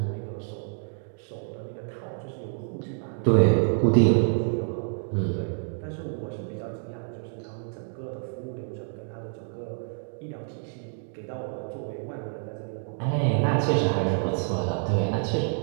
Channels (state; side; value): silent; left; 59 dB below the other